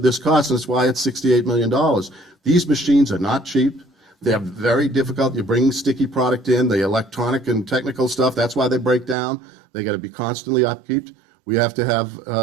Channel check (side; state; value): left; drops out; at 9.2 s